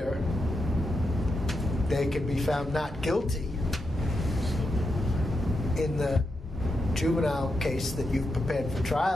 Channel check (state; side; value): normal; both; correlation 0.86